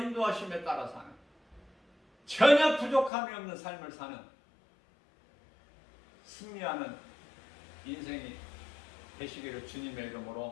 따라 사는 전혀 부족함이 없는 삶을 사는 승리하는 인생이 되시기를 주님의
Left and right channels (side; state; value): right; drops out; at 3.1 s